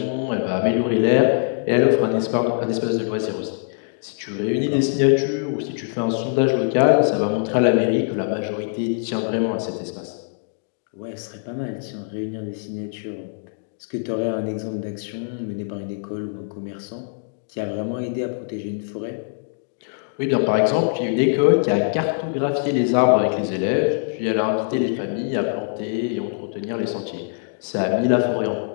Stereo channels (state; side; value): silent; right; digital silence